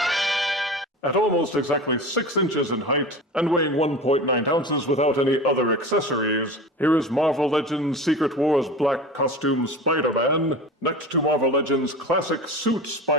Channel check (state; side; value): normal; both; correlation 0.32